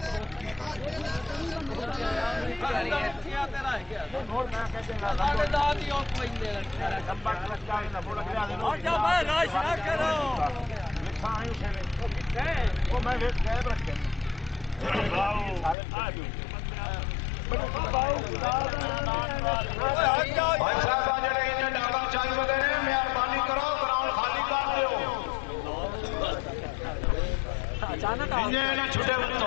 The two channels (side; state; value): right; drops out; at 15.8 s